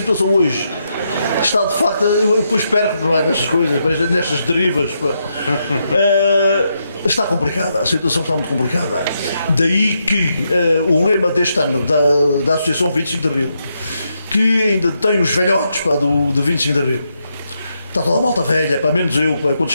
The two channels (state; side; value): inverted; both; correlation -0.81